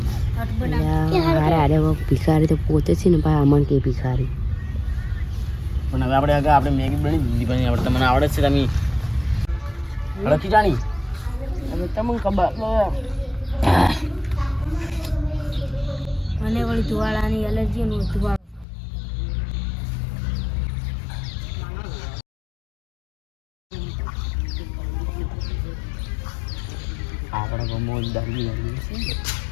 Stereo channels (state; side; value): drops out; right; at 18.7 s